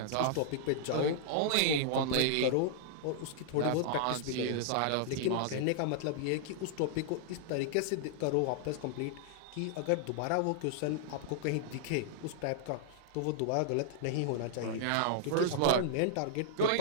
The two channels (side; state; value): both; different; correlation -0.01